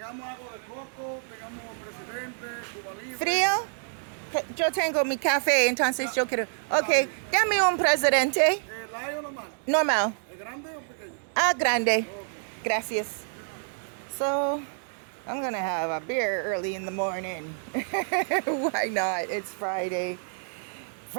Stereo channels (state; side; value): silent; left; 59 dB below the other